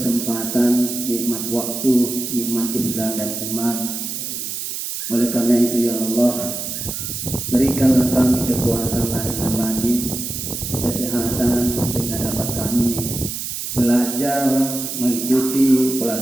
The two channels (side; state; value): right; noise; hiss, 5 dB below the sound